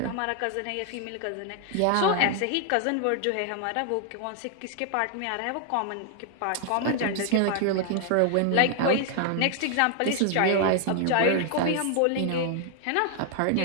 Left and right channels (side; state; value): both; different; correlation 0.00